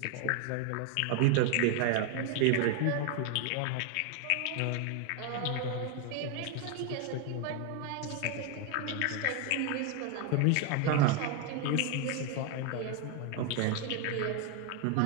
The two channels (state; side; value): different; both; correlation 0.01